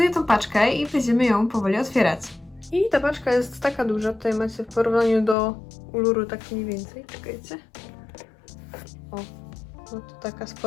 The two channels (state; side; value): drops out; right; at 5.4 s